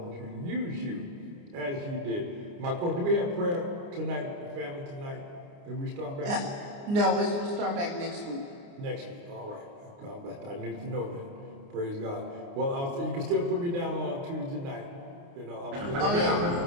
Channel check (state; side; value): late; left; 29 ms